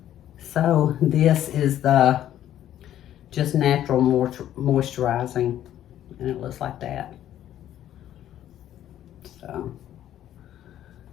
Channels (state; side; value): quieter; right; 11.8 dB